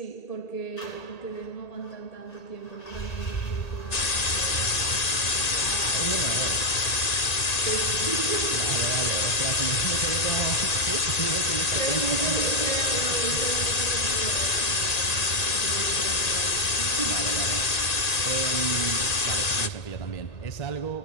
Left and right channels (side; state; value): right; late; 1.8 ms